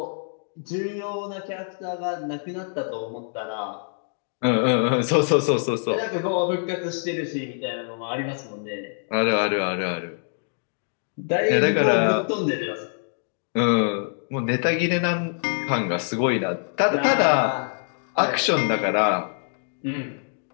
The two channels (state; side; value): silent; right; digital silence